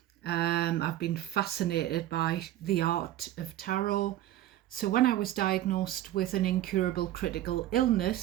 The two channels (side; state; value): left; quieter; 13.6 dB